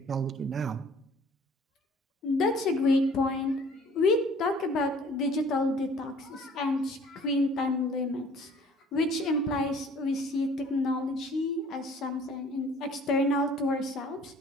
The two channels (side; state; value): both; normal; correlation 0.53